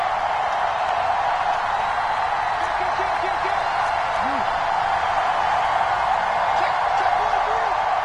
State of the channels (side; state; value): both; identical; correlation 1.00